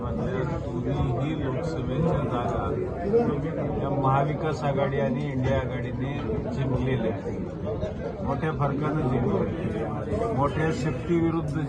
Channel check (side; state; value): both; identical; correlation 1.00